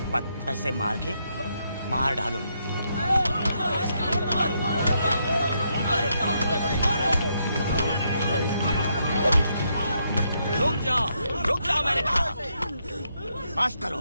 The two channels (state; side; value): inverted; both; correlation -0.77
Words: पत्थर से मार के मार डालो। रुक जाओ मैंने कहा। बस करो।